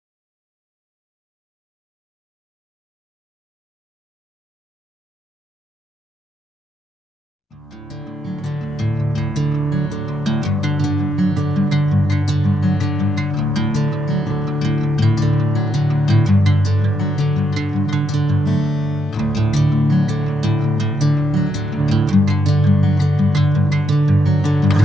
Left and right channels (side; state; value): both; normal; correlation 0.78